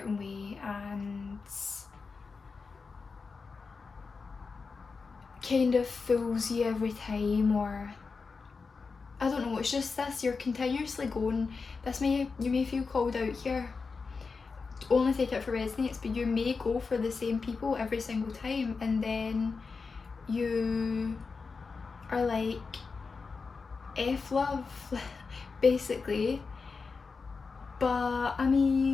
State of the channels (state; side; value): quieter; right; 4.7 dB